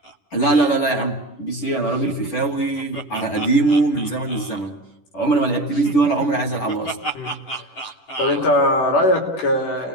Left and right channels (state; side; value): late; right; 10 ms